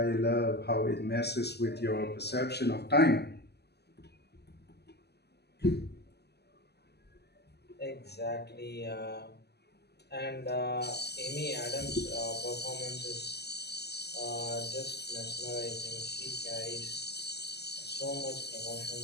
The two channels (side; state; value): right; late; 0.48 ms